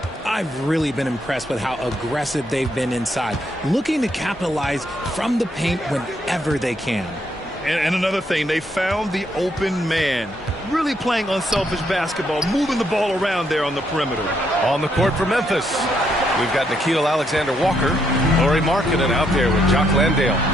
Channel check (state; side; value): normal; both; correlation 0.75